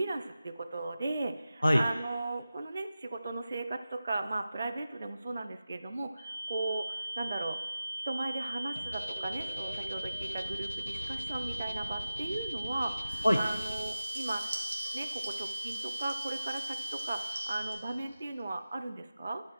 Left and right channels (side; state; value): both; inverted; correlation -0.95